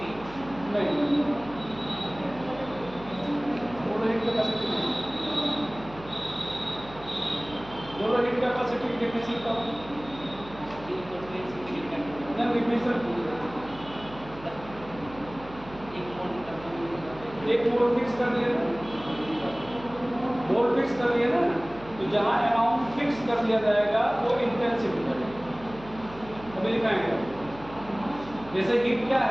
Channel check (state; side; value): noise; right; hum, 17 dB below the sound